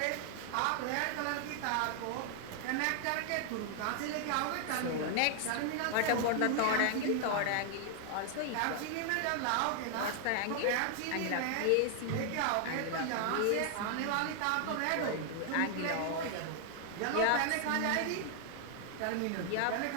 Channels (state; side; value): different; both; correlation 0.00